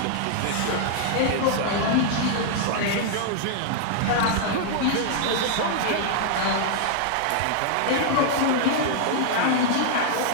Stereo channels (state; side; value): different; both; correlation 0.00